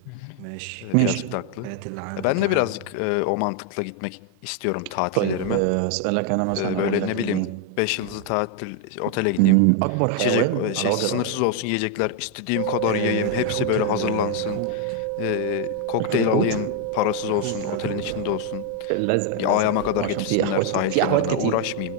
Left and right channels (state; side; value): different; both; correlation 0.01